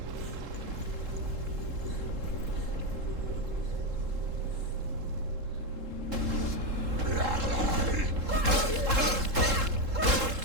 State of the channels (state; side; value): late; left; 3.7 ms